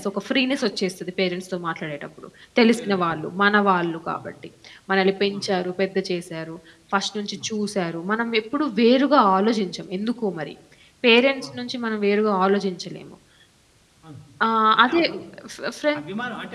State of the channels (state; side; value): identical; both; correlation 1.00